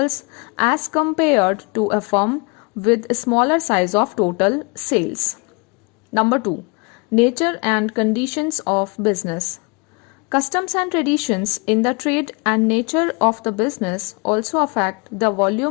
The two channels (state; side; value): quieter; right; 30.8 dB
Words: as compared to a firm with a smaller size of total sales. Number 2. Nature and conditions of business. Customs and traditions in the trade and nature of the business also affect the